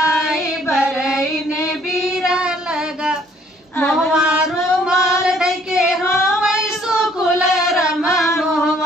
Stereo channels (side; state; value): both; normal; correlation 0.62